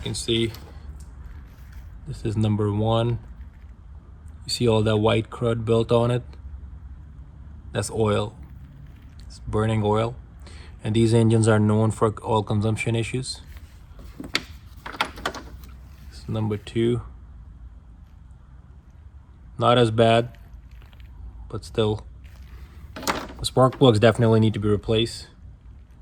can see this is number 1. You see all that white crud built on it? That's oil. It's burning oil. And these engines are known for oil consumption issues. This is number 2. Not as bad, but still. The spark plugs definitely need to be replaced.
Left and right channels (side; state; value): both; identical; correlation 1.00